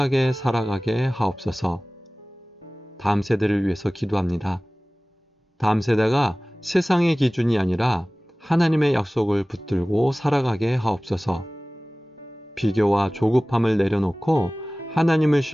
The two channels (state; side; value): normal; both; correlation 0.98